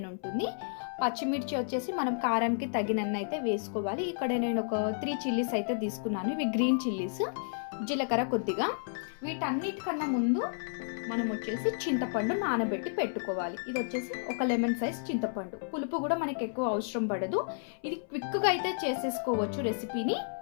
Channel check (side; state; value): right; silent; 57 dB below the other